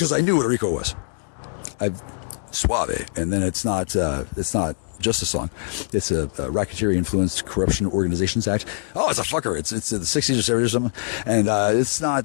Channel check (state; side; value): silent; right; 63 dB below the other